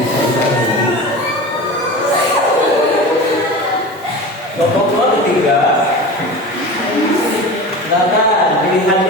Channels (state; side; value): normal; both; correlation 0.31